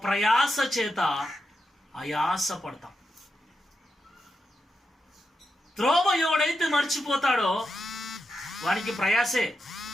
ప్రయాస చేత ఆయాస పడతాం. త్రోవ ఎవడైతే మర్చిపోతాడో వానికి ప్రయాసే.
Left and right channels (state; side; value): normal; both; correlation 0.87